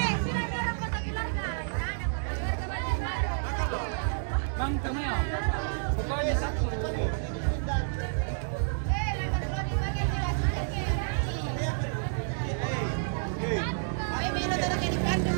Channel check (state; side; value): silent; left; digital silence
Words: Bang, kamu ya. Pokoknya 1.